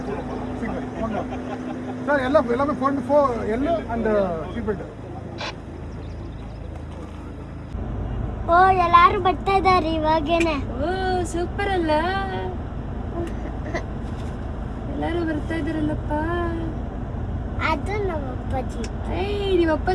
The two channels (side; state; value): both; identical; correlation 1.00